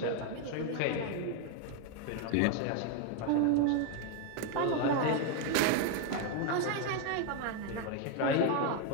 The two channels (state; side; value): different; both; correlation 0.01